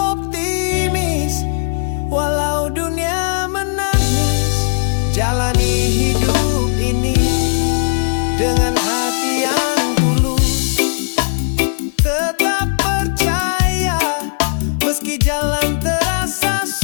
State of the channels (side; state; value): right; silent; digital silence